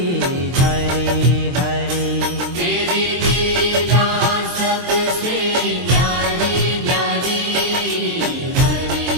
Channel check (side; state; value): left; late; 23 ms